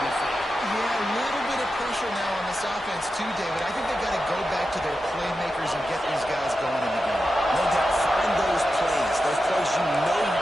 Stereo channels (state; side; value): normal; both; correlation 0.90